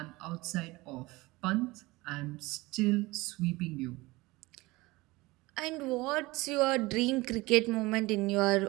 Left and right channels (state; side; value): quieter; left; 21.4 dB